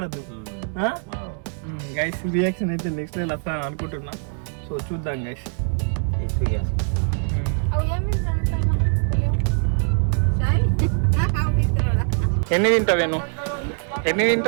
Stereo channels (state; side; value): silent; left; 56 dB below the other